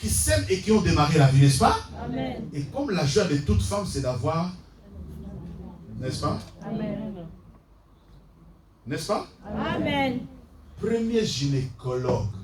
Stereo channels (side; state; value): both; identical; correlation 1.00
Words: s'aiment et qui ont démarré la vie, n'est-ce pas? Amen. Et comme la joie de toute femme, c'est d'avoir, n'est-ce pas? Amen. N'est-ce pas? Amen. Premier gynécologue,